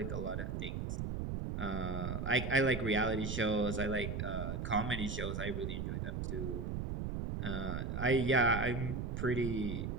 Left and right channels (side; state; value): right; noise; rumble, 3 dB below the sound